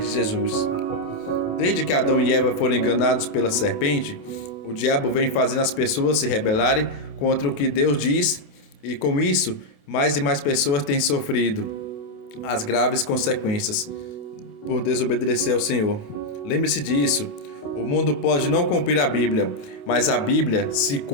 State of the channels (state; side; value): late; right; 28 ms